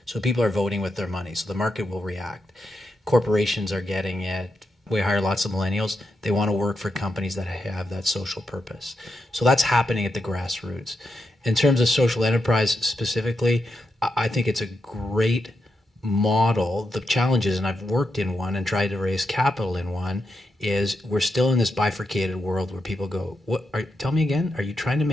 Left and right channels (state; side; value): normal; both; correlation 0.85